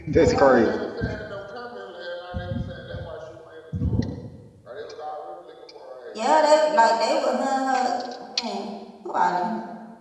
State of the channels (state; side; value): identical; both; correlation 1.00